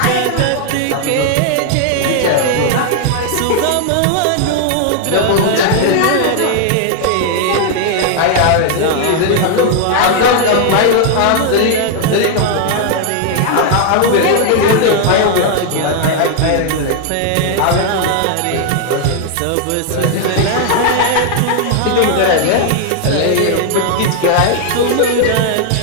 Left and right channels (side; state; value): both; different; correlation 0.00